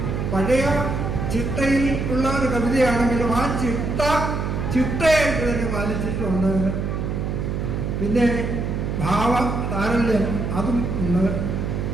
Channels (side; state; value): right; noise; hum, 2 dB below the sound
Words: പഴയ ചിട്ടയിൽ ഉള്ള ഒരു കവിതയാണെങ്കിലും ആ ചിട്ടയായിട്ട് തന്നെ പാലിച്ചിട്ടുണ്ട്. പിന്നെ ഭാവ താരല്യം അതും ഉണ്ട്.